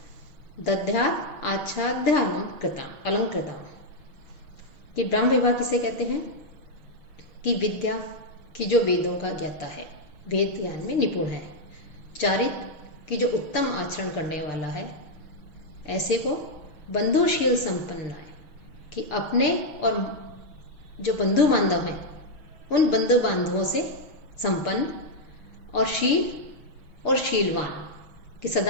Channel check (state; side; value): late; right; 6.2 ms